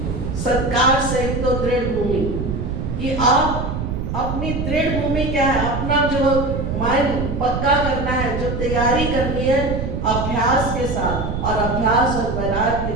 सत्कार सहित तो दृढ़ भूमि, कि आप अपनी दृढ़ भूमि क्या है? अपना जो माइंड पक्का करना है, जो तैयारी करनी है अभ्यास के साथ। और अभ्यास और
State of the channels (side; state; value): right; noise; rumble, 3 dB below the sound